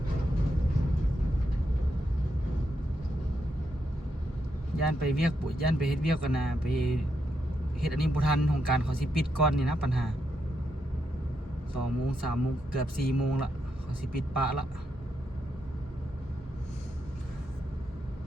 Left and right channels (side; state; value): both; normal; correlation 0.82